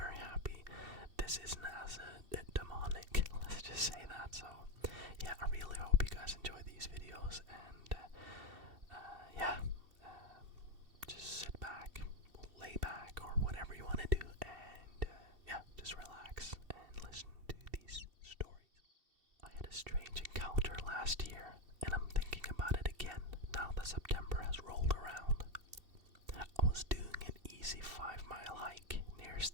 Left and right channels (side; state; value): left; late; 2.7 ms